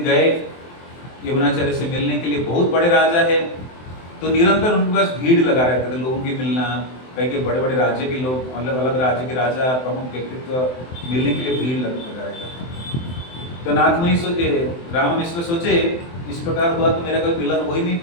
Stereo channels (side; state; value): right; late; 23 ms